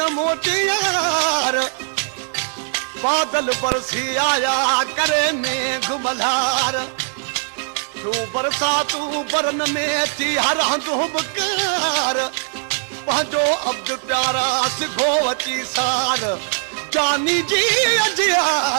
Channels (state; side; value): silent; left; 61 dB below the other